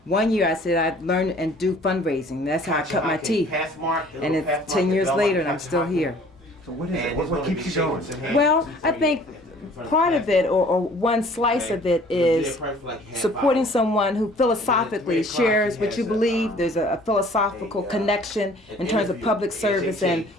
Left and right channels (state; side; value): normal; both; correlation 0.53